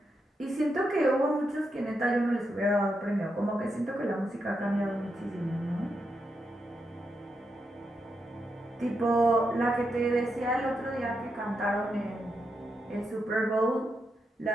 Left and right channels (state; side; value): normal; both; correlation 0.84